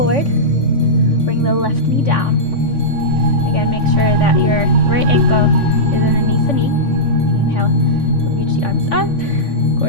Bring the left knee down. Again, make sure that your right ankle is underneath the knee. Inhale, reach the arms up.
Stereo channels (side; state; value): right; late; 3.5 ms